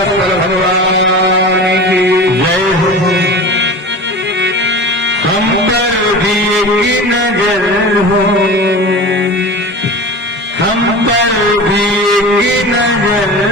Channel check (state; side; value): normal; both; correlation 0.33